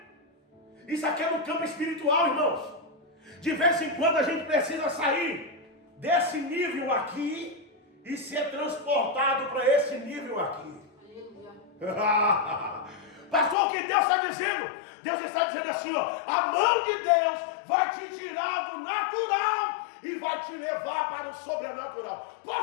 Isso aqui é no campo espiritual, irmãos. De vez em quando a gente precisa sair desse nível aqui e ser transportado para esse nível aqui. Pastor, o que Deus está dizendo? Deus está dizendo assim, ó: a mão de Deus vai te tirar do natural e vai te levar para o sobrenatural.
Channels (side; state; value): right; drops out; at 13.6 s